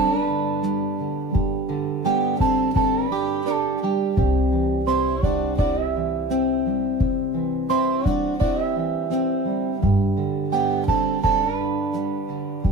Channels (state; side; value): normal; both; correlation 0.43